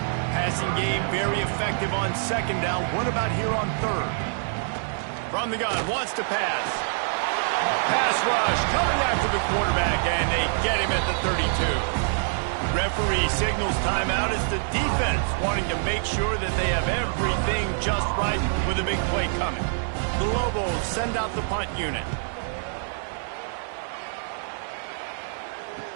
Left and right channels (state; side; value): silent; left; digital silence